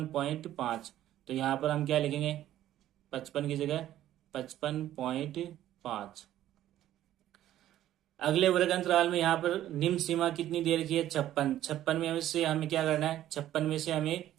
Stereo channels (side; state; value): left; quieter; 12.8 dB